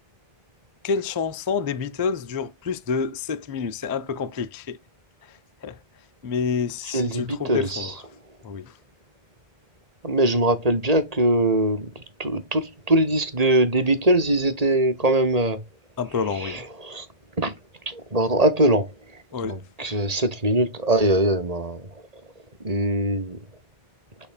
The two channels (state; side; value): late; left; 1.8 ms